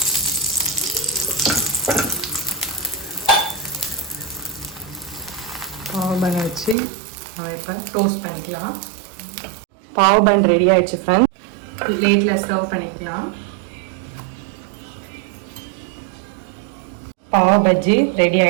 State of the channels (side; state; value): left; drops out; at 6.8 s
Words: பாவ் பன் வச்சு நம்ம இப்போ டோஸ்ட் பண்ணிக்கலாம். பாவ் பன் ரெடி ஆயிடுச்சு ஃப்ரெண்ட்ஸ். பிளேட்டில் சர்வ் பண்ணிக்கலாம். பாவ் பஜ்ஜி ரெடி